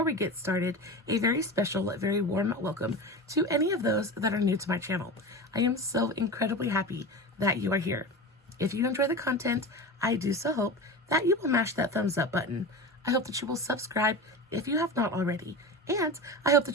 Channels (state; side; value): normal; both; correlation 0.28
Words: we get started, a very special, very warm welcome to any of those that are new to my channel. I am so incredibly happy that you are here. If you enjoy the content, I do so hope that you will mash that thumbs up button. I hope that you will subscribe if you have not already. And I hope